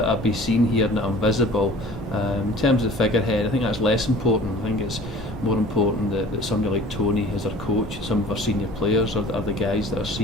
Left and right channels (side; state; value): both; normal; correlation 0.46